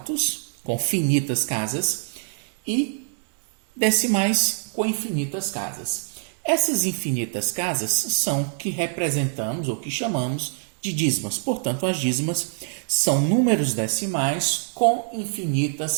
com finitas casas, e decimais com infinitas casas. Essas infinitas casas são que representamos ou que chamamos de dízimas. Portanto, as dízimas são números decimais com infinitas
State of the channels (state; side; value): silent; left; 57 dB below the other